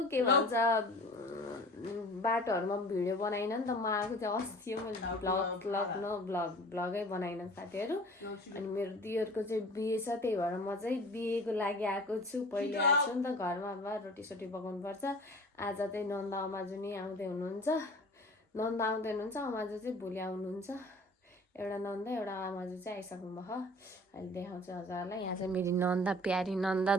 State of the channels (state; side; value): normal; both; correlation 0.44